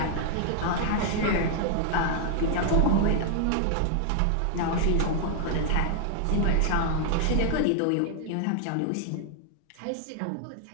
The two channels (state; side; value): different; both; correlation 0.00